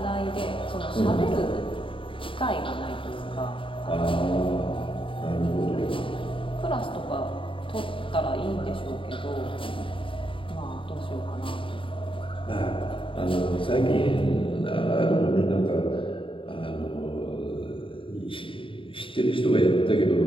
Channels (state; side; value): late; right; 0.25 ms